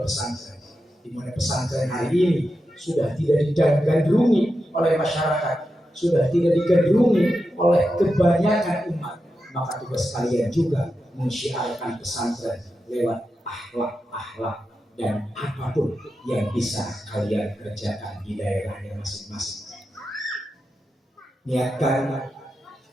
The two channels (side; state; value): both; normal; correlation 0.89